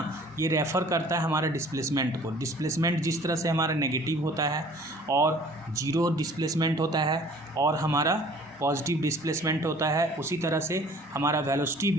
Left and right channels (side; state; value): both; normal; correlation 0.51